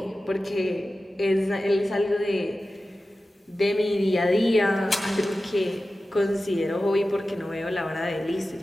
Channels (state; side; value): normal; both; correlation 0.94